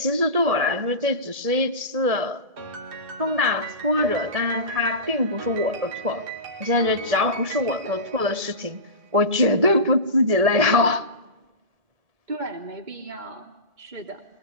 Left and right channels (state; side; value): late; left; 1.7 ms